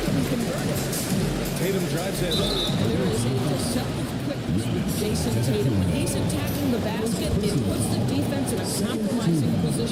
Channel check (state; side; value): identical; both; correlation 1.00